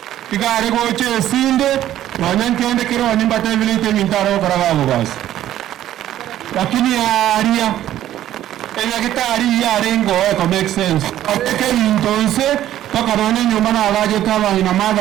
igare goche sinde wanyankende kero nimbata vilite mintaro karagabo basi lakini aria enya kitari ya rengo eko make sense ateke entonces pakarone nyumba na alaje kama ina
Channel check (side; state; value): left; quieter; 12.5 dB